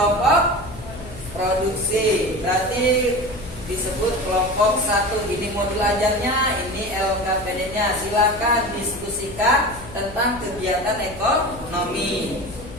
produksi berarti disebut kelompok 1. Ini modul ajarnya, ini LKPD-nya. Silakan diskusikan tentang kegiatan ekonomi.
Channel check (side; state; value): left; noise; hum, 15 dB below the sound